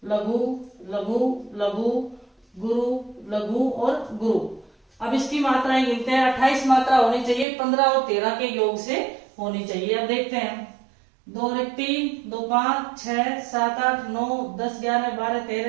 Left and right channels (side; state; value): left; drops out; at 7.5 s